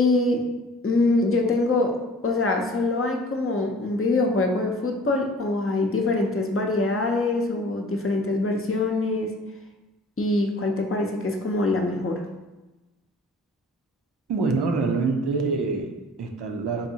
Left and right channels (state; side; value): normal; both; correlation 0.48